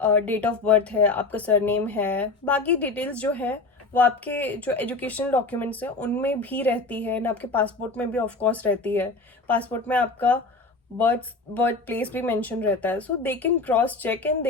डेट ऑफ बर्थ है, आपका सरनेम है, बाकी डिटेल्स जो है वो आपके जो एजुकेशनल डॉक्यूमेंट्स हैं उनमें भी रहती है, एंड आपके पासपोर्ट में भी ऑफ कोर्स रहती है। पासपोर्ट में आपका बर्थ प्लेस भी मेंशन रहता है, so they can cross check and they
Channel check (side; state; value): right; quieter; 3.6 dB